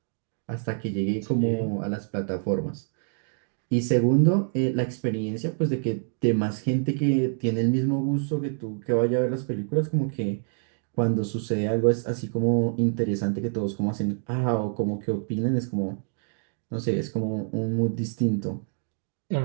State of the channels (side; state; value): left; silent; 60 dB below the other